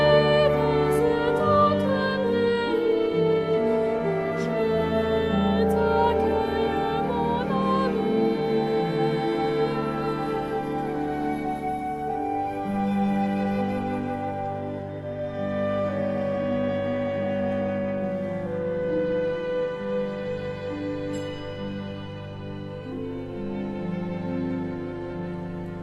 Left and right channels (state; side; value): identical; both; correlation 1.00